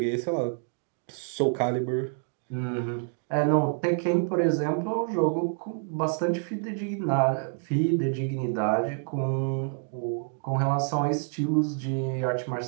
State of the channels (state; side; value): silent; left; 60 dB below the other